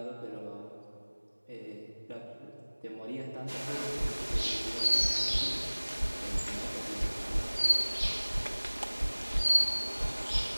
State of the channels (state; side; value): inverted; both; correlation -1.00